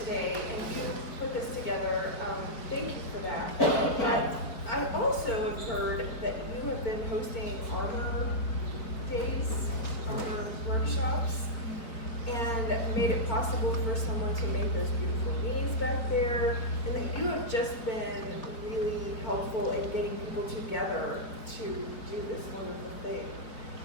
and you put this together. Thank you for that. But I also have heard that you have been hosting armor days, armor workshops, and made it possible for someone to make those beautiful knees back there, and that you have just been really helpful in getting people together to do this wonderful thing.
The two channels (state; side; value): late; right; 4.6 ms